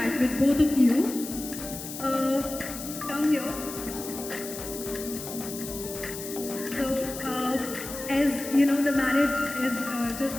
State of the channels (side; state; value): left; noise; hiss, 10 dB below the sound